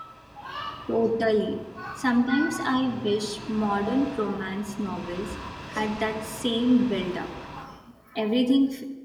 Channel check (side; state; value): both; identical; correlation 1.00